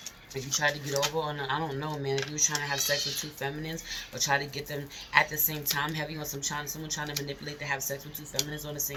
If you tried to get over on, I don't know, man. If you were trying to have sex with 2 feminines or try to get them at the same time, heavy on someone trying to manipulate to have sex with 2 feminines on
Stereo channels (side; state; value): both; identical; correlation 1.00